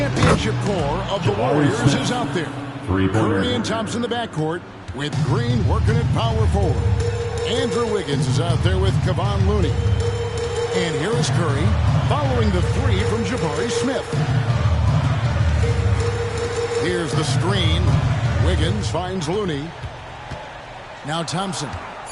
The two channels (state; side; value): identical; both; correlation 1.00